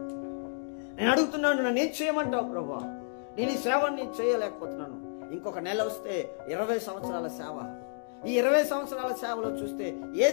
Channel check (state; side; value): silent; right; digital silence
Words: నేను అడుగుతున్నాను, నన్ను ఏం చేయమంటావు ప్రభువా? నేను ఈ సేవని చేయలేకపోతున్నాను. ఇంకొక నెల వస్తే 20 సంవత్సరాల సేవ. ఈ 20 సంవత్సరాల సేవలో చూస్తే